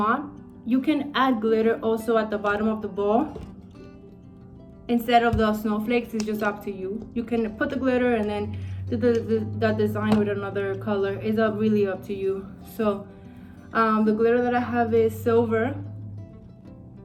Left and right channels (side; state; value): both; identical; correlation 1.00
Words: You can add glitter also at the bottom of the ball instead of the snowflakes. It's just up to you. You can put the glitter and then the design with another color. Is really up to you. So the glitter that I have is silver,